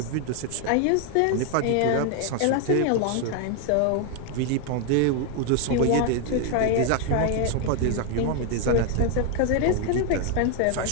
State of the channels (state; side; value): different; both; correlation 0.01